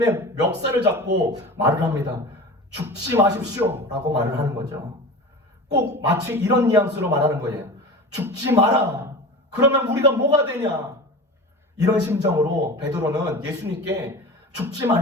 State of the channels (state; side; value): normal; both; correlation 0.33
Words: 멱살을 잡고 말을 합니다. 죽지 마십시오 라고 말을 하는 거죠. 꼭 마치 이런 뉘앙스로 말하는 거예요. 죽지 마라. 그러면 우리가 뭐가 되냐. 이런 심정으로 베드로는 예수님께 죽지